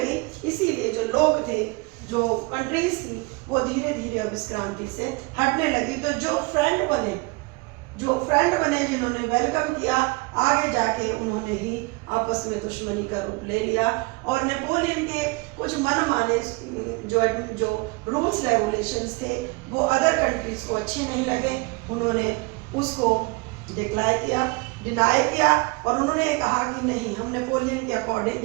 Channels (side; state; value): left; quieter; 25.9 dB